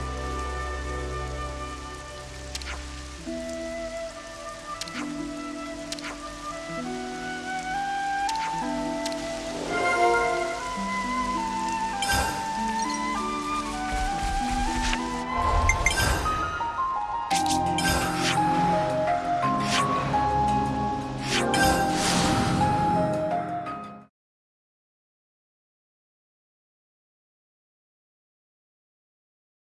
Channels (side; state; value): both; identical; correlation 1.00